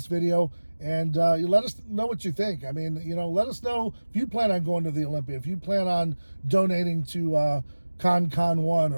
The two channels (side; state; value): both; inverted; correlation -1.00